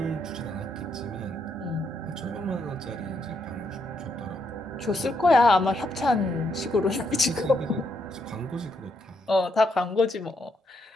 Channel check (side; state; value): both; normal; correlation 0.77